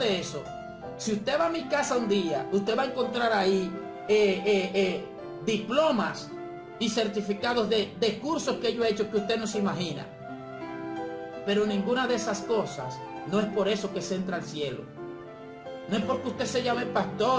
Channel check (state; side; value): identical; both; correlation 1.00